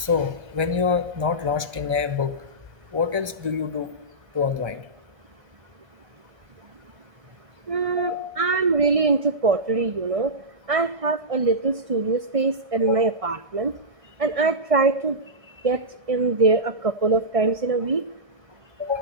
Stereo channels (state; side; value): late; left; 1.3 ms